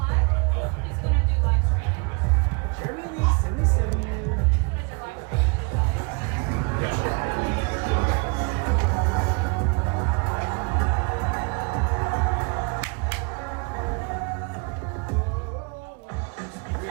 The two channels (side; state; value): left; quieter; 32.3 dB